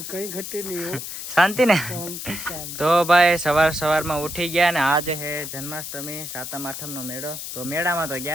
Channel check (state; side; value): noise; left; hiss, 8 dB below the sound